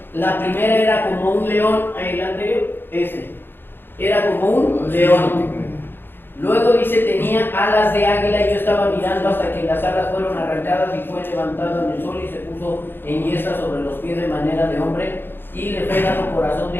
La primera era como un león, el anterior, ese, era como un león. Luego dice, tenía alas de águila, y yo estaba mirando hasta que las alas fueron arrancadas y fue levantado en el sol y se puso en yesca sobre los pies de manera de hombre y le fue dado corazón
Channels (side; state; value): right; late; 0.10 ms